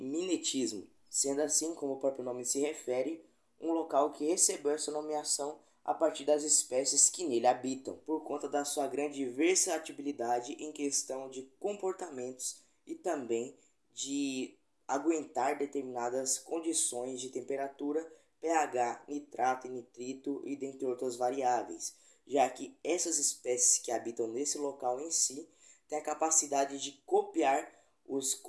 sendo assim, como o próprio nome se refere, um local que recebeu essa nomeação a partir das espécies que nele habitam, por conta da sua grande versatilidade em questão de comportamentos e também de aguentar determinadas condições de temperatura, pH, nitrato e nitrito e dentre outras variáveis, já que essas espécies que habitam nesse local em si têm a capacidade de copiar os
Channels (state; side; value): identical; both; correlation 1.00